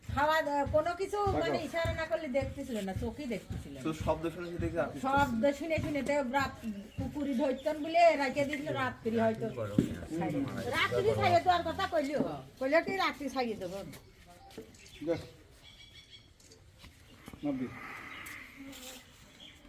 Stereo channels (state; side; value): identical; both; correlation 1.00